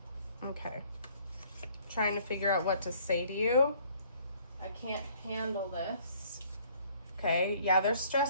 Okay. Trying to figure out what to say to you. I can't handle this. Okay, yeah, they're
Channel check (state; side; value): inverted; both; correlation -0.60